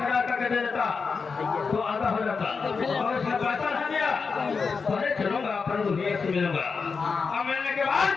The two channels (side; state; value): right; quieter; 5.1 dB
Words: हजार करके दे देता तो आधा हो जाता, और उसने पैसा नहीं दिया पहले चलूंगा अपन दुनिया से मिलूंगा, अब मिलने के बाद